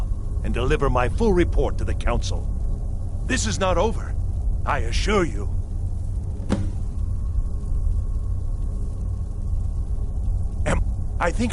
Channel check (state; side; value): identical; both; correlation 1.00